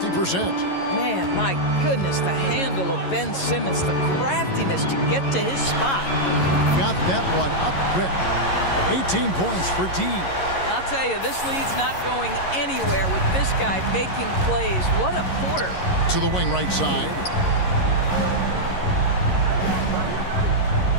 Man, my goodness, the handle of Ben Simmons, the craftiness to get to his spot. Got that one up quick. 18 points for D. I'll tell you, this lead's not going anywhere with this guy making plays. What a quarter. to the wing right side.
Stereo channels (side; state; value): right; late; 11 ms